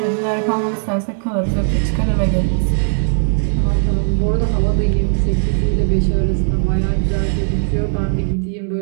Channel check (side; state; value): left; silent; 63 dB below the other